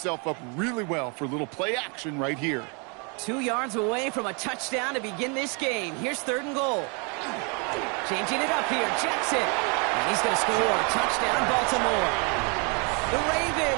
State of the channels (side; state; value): left; quieter; 34.3 dB